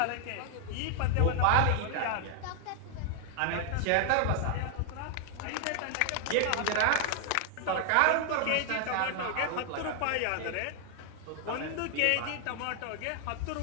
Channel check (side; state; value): both; different; correlation 0.00